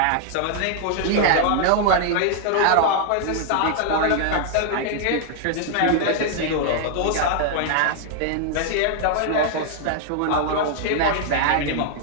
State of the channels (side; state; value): both; different; correlation -0.01